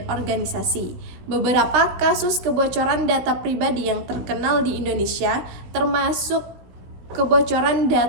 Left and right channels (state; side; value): late; left; 16 ms